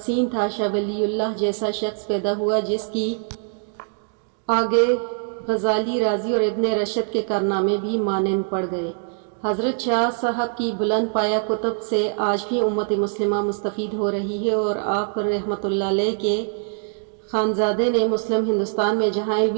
تھا، شاہ ولی اللہ جیسا شخص پیدا ہوا جس کی آگے غزالی، رازی اور ابن رشد کے کارنامے بھی مانند پڑ گئے۔ حضرت شاہ صاحب کی بلند پایہ کتب سے آج بھی امت مسلمہ مستفید ہو رہی ہے، اور آپ رحمۃ اللہ علیہ کے خانزادے نے مسلم ہندوستان میں جہاں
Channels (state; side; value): silent; left; 63 dB below the other